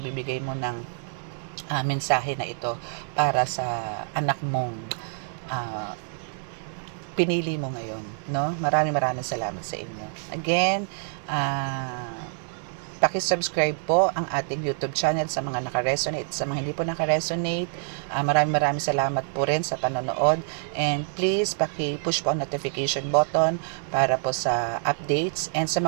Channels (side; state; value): left; silent; digital silence